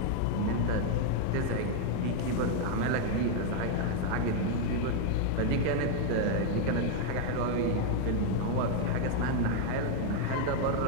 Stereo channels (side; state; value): both; different; correlation 0.00